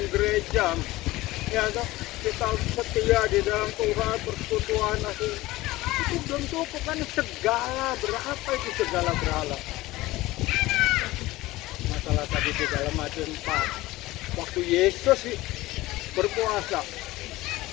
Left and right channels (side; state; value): right; quieter; 18.5 dB